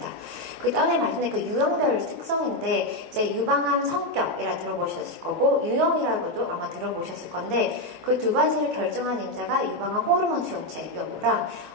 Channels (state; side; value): normal; both; correlation 0.06